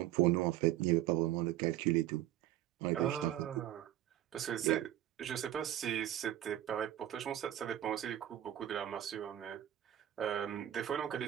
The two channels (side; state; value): left; quieter; 12.6 dB